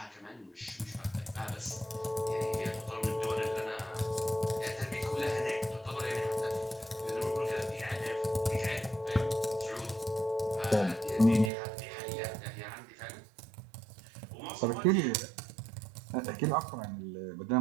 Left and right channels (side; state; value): left; drops out; at 11.5 s